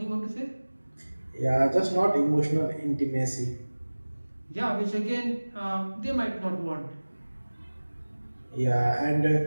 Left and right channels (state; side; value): inverted; both; correlation -1.00